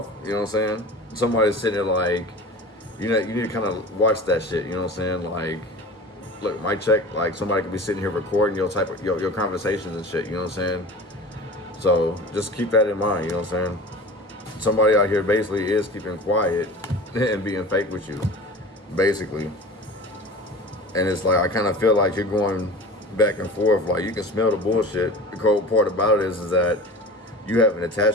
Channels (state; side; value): normal; both; correlation 0.36